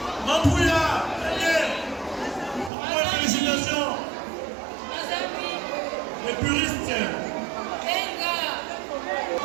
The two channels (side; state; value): left; drops out; at 2.7 s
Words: Mambouya. Félicitations. Les puristes.